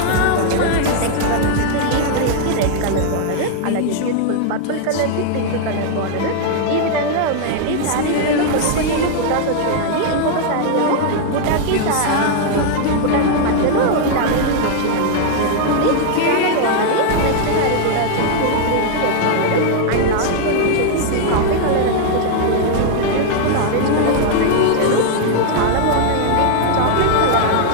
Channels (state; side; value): different; both; correlation 0.00